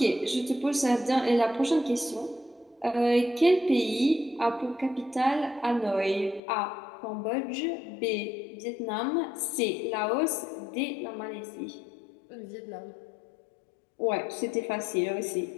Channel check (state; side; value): drops out; right; at 6.4 s